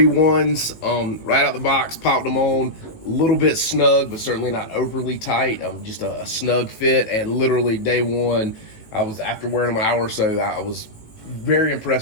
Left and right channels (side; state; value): right; late; 18 ms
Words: right out the box, popped them on. A little bit snug, but certainly not overly tight. Just a snug fit, and literally day one, after wearing them an hour or so, I was very